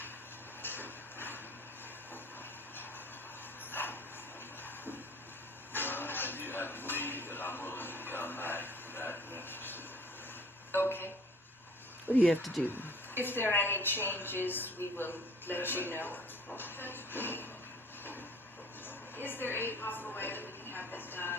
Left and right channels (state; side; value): normal; both; correlation 0.50